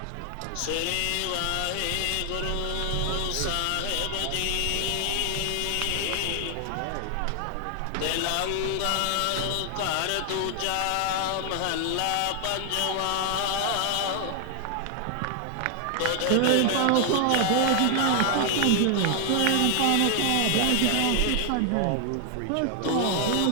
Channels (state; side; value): different; both; correlation 0.00